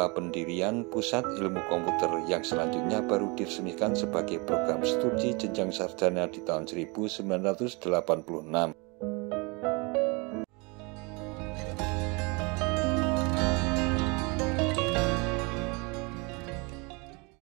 pendirian Pusat Ilmu Komputer yang selanjutnya baru diresmikan sebagai program studi jenjang sarjana di tahun 1986.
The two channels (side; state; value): left; quieter; 28.9 dB